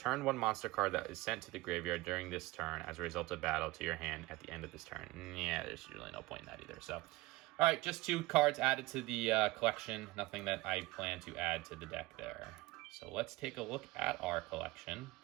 1 monster card that is sent to the graveyard during this turn as a result of battle to your hand at the end of this turn. Yeah, there's really no point in that either. So, all right, just 2 cards added to the collection. Nothing that I plan to add to the deck there. So let's take a look at our collection.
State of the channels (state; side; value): quieter; left; 20.5 dB